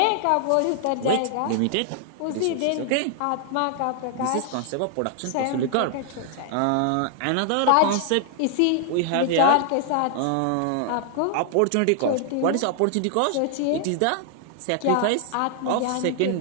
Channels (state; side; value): different; both; correlation 0.00